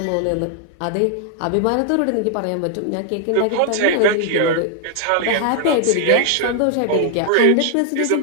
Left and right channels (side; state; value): both; different; correlation 0.00